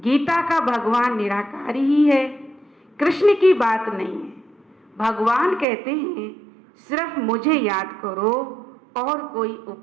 का भगवान निराकारी ही है, कृष्ण की बात नहीं है। भगवान कहते हैं सिर्फ मुझे याद करो और कोई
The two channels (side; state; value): left; drops out; at 5.7 s